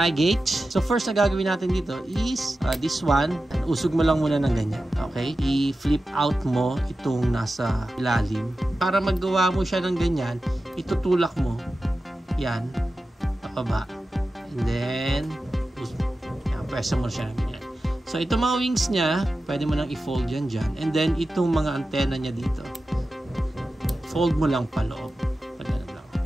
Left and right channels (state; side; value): normal; both; correlation 0.93